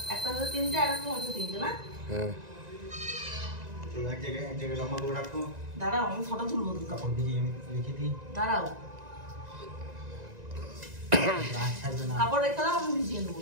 একটা হচ্ছে তিনটে, আর একটা হচ্ছে তিনটে না? হ্যাঁ। এক জায়গায় লম্বা করে রাখো। দাঁড়াও, আমি ফটো তুলবো তো। কাপড় দিয়ে আমি রেখে দিই। দাঁড়াও, কাপড় রেখে দাও, আমি ভিজিয়ে নেবো।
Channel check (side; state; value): left; late; 1.9 ms